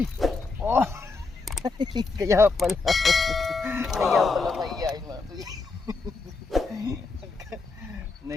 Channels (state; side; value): quieter; right; 3.9 dB